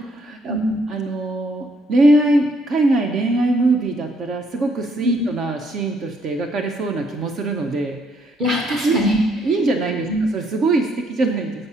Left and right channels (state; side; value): normal; both; correlation 0.70